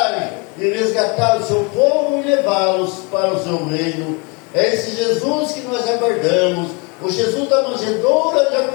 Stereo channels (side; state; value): right; quieter; 31.4 dB